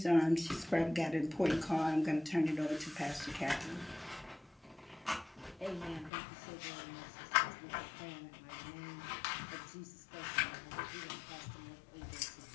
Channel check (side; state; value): right; drops out; at 6.1 s